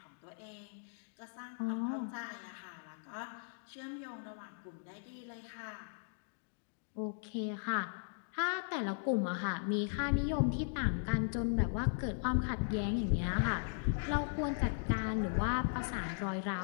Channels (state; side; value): silent; right; digital silence